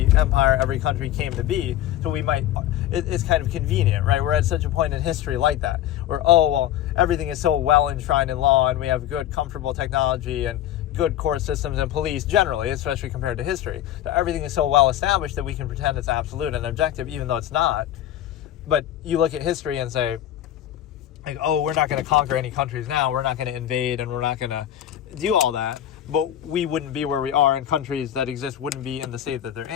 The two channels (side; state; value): right; quieter; 12.0 dB